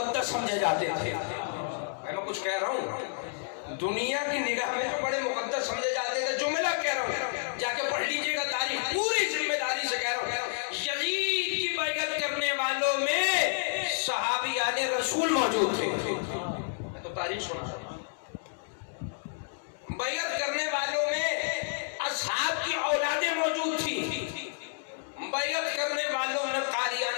سمجھے جاتے تھے، میں کچھ کہہ رہا ہوں، دنیا کی نگاہ میں جو بڑے مقدس سمجھے جاتے تھے، جملہ کہہ رہا ہوں، جا کے پڑھ لیجئے گا تاریخ، پوری ذمہ داری سے کہہ رہا ہوں، یزید کی بیعت کرنے والوں میں صحابیان رسول موجود تھے، میں تو تاریخ سنا رہا ہوں، بیعت کرنے والوں میں اصحاب کی اولادیں موجود تھیں، بیعت کرنے والوں میں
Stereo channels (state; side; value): silent; right; digital silence